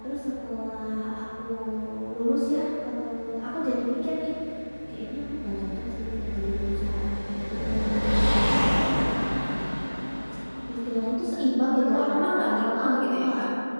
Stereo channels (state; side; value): inverted; both; correlation -1.00